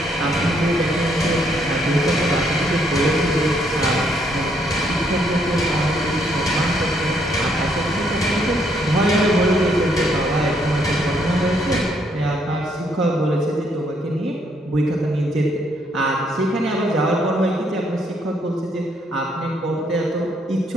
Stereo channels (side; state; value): both; normal; correlation 0.71